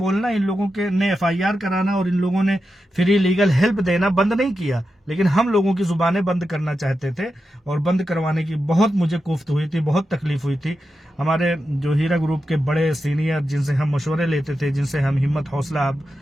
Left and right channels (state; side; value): normal; both; correlation 0.89